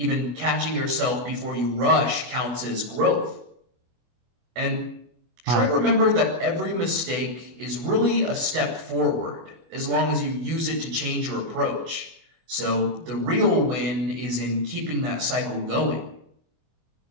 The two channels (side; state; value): left; late; 25 ms